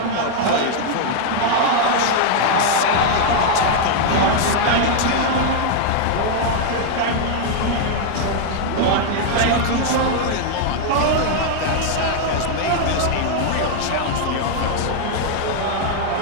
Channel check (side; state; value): both; different; correlation 0.00